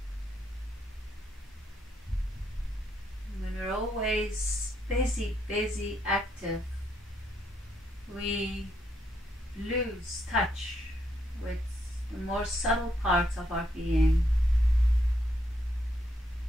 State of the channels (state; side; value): normal; both; correlation 0.77